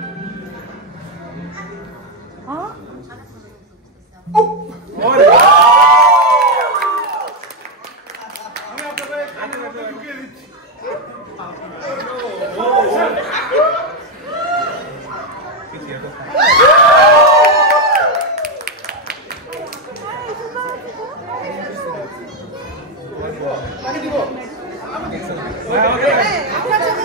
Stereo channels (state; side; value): normal; both; correlation 0.05